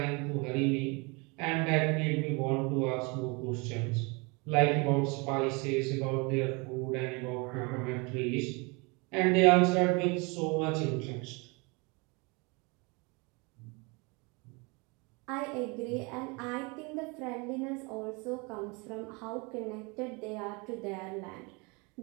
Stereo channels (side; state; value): left; quieter; 29.1 dB